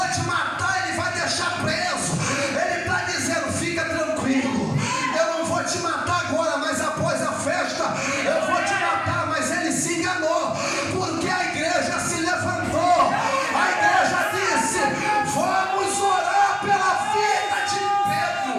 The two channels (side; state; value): both; identical; correlation 1.00